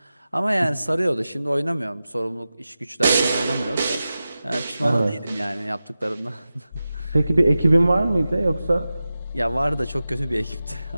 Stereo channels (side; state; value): both; inverted; correlation -0.94